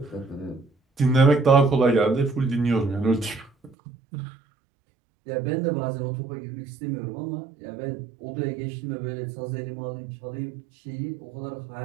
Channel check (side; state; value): left; drops out; at 3.8 s